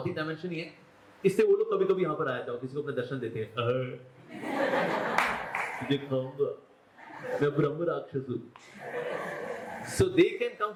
डायमेंशन ही है, इससे वो लोग कभी कभी यहाँ पर आया था, किसी को अपने दर्शन देते हैं, मैं ब्रह्म राक्षस हूं। So they can come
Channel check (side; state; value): both; identical; correlation 1.00